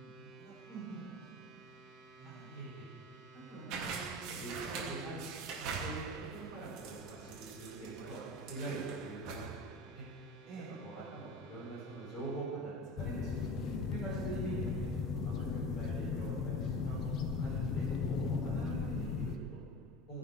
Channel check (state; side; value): normal; both; correlation 0.33